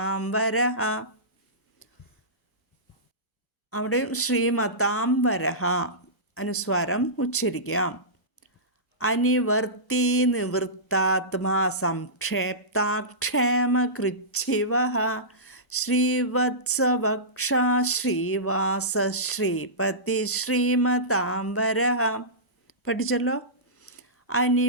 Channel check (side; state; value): both; normal; correlation -0.19